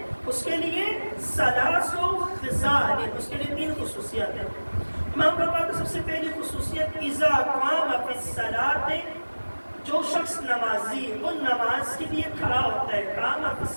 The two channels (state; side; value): inverted; both; correlation -1.00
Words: اس کے لیے ثلاث خصال، اس کے لیے 3 خصوصیتیں ہیں۔ امام فرماتے ہیں سب سے پہلی خصوصیت اذا قام فی الصلاۃ، جو شخص نمازی وہ نماز کے لیے کھڑا ہوتا ہے، قام فی